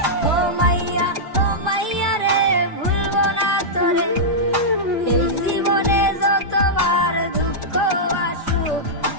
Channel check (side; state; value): both; normal; correlation -0.10